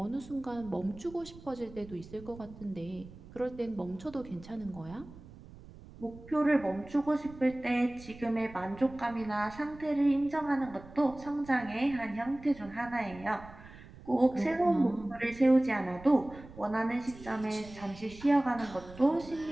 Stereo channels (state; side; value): noise; right; rumble, 18 dB below the sound